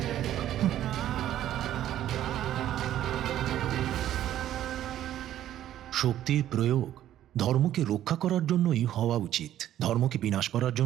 শক্তির প্রয়োগ ধর্মকে রক্ষা করার জন্যই হওয়া উচিত, ধর্মকে বিনাশ করার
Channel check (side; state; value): left; quieter; 12.1 dB